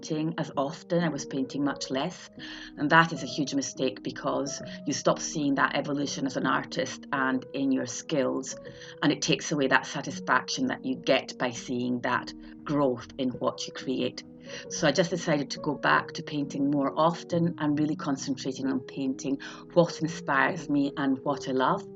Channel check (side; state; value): both; identical; correlation 1.00